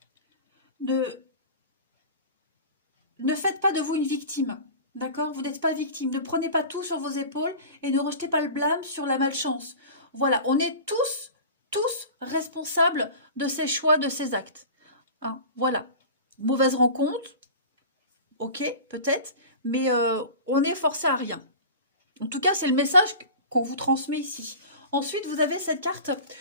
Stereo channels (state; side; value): inverted; both; correlation -0.35